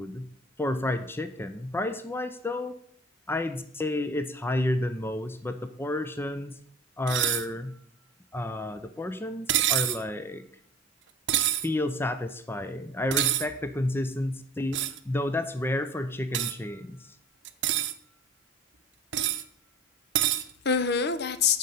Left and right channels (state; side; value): normal; both; correlation 0.42